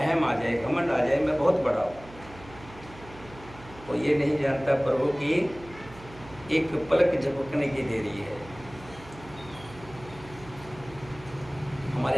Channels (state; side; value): noise; right; hum, 18 dB below the sound